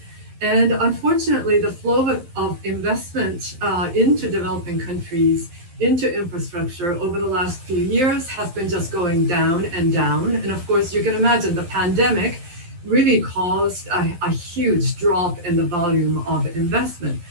And unfortunately, the flow of investment into developing countries into infrastructure over the last few years has been just going down and down. And of course, you can imagine the pandemic really caused a huge drop in the volume of investment.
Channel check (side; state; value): left; late; 12 ms